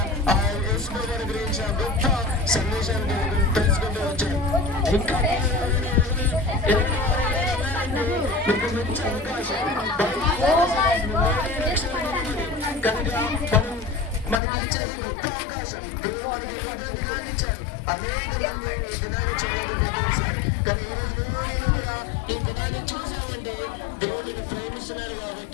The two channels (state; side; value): drops out; right; at 14.4 s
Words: ఆ యేసు ప్రభువుని గురించి ఆ గొప్ప సందేశాన్ని తెలుసుకుంటూ వచ్చారు. ఇంకా మీకు మంచి అవకాశం కనుక మనకి ఇచ్చే గొప్ప అవకాశం దేవుడు మనకి దినాన్ని ఇచ్చారు. అనేక మంది ఈ దినాన్ని చూడబోతున్నారు. కానీ ఈరోజు నేను కూడా ఈ దినాన్ని చూసామంటే దేవుడిని ప్రేమిస్తున్నారు